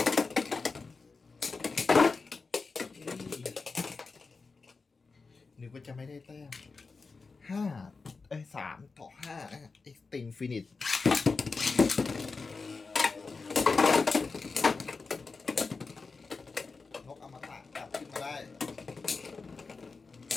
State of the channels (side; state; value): right; quieter; 4.4 dB